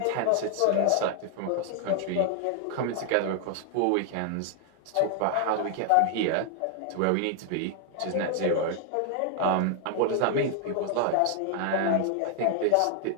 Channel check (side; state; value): both; different; correlation 0.00